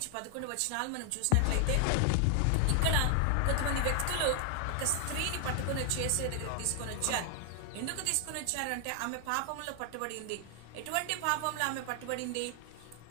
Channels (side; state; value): both; different; correlation 0.00